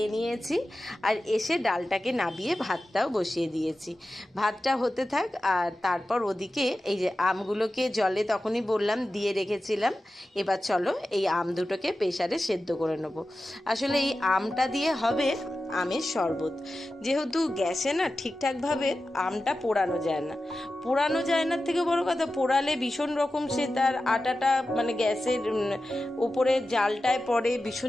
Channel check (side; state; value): both; normal; correlation 0.93